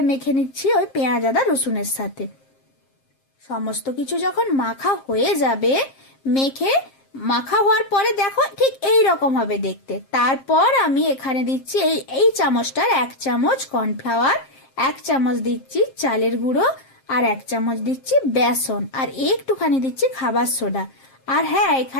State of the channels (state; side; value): late; right; 7.5 ms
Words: মেখে নিচ্ছি ওই পেঁয়াজ, আদা, রসুনের সাথে। সমস্ত কিছু যখন মাখা হয়ে যাবে, মেখে মাখা হওয়ার পরে দেখো ঠিক এই রকম হবে দেখতে। তারপর আমি এখানে দিচ্ছি এই এই চামচটার 1 চামচ কর্নফ্লাওয়ার, 1 চামচ দিচ্ছি চালের গুঁড়ো, আর 1 চামচ দিচ্ছি বেসন, আর একটুখানি দিচ্ছি খাবার সোডা। আর হ্যাঁ,